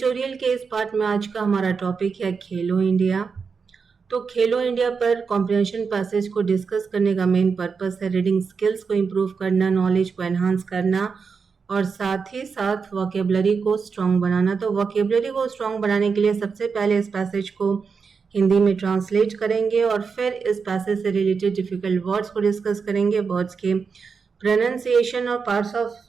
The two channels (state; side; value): quieter; left; 5.5 dB